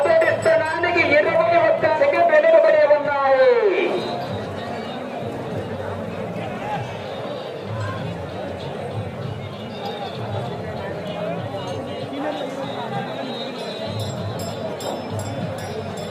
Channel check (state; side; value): identical; both; correlation 1.00